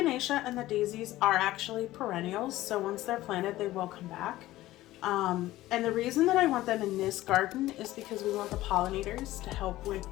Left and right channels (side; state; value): right; quieter; 16.2 dB